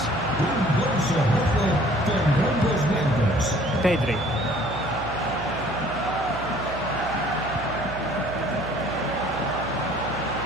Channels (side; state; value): right; noise; hum, 13 dB below the sound